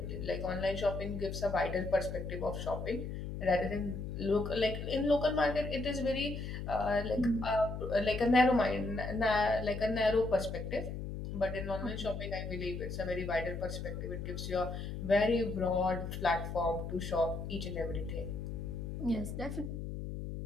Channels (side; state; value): left; noise; hum, 6 dB below the sound